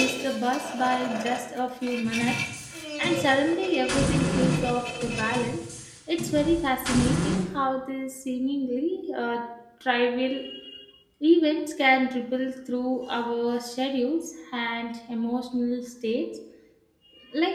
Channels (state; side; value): identical; both; correlation 1.00